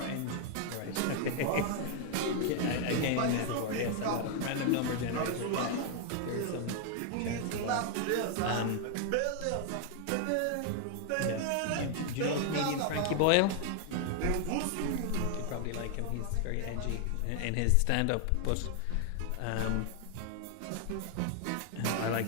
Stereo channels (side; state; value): both; different; correlation 0.00